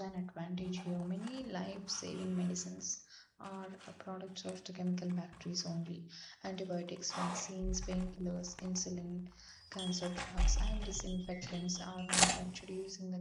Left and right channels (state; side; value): identical; both; correlation 1.00